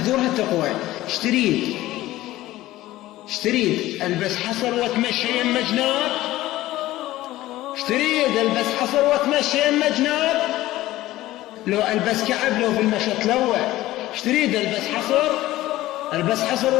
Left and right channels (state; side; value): quieter; right; 16.2 dB